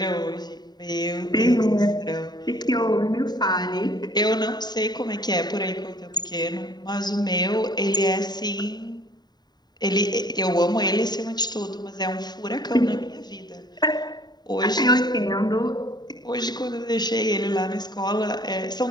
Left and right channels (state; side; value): late; right; 0.20 ms